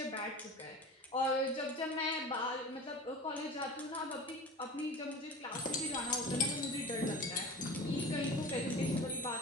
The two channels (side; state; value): both; normal; correlation 0.34